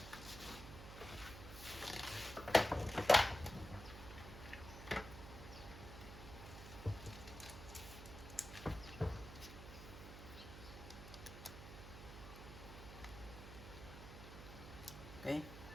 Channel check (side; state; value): right; noise; hum, 11 dB below the sound